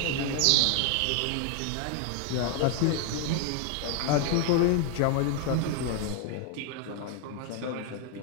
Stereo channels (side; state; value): both; different; correlation 0.00